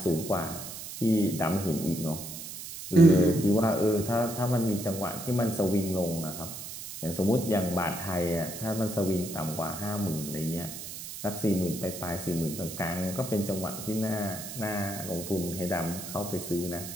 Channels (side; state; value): right; noise; hiss, 10 dB below the sound